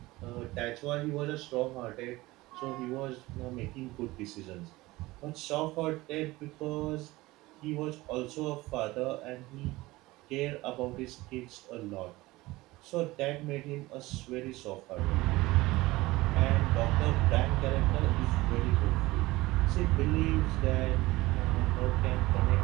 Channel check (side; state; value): left; quieter; 19.6 dB